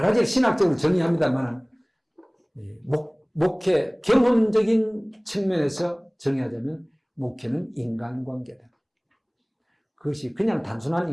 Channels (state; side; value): identical; both; correlation 1.00